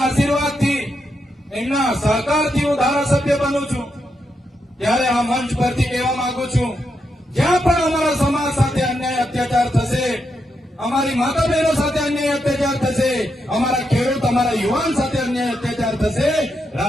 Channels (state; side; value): normal; both; correlation 0.83